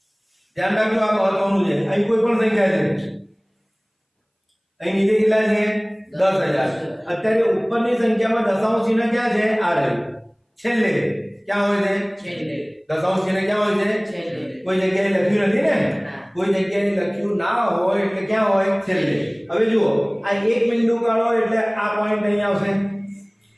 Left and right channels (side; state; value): both; identical; correlation 1.00